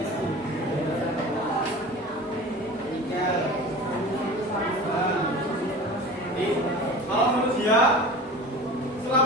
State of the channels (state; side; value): normal; both; correlation 0.37